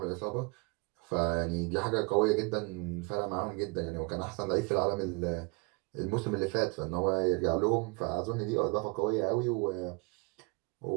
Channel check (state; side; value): quieter; left; 29.4 dB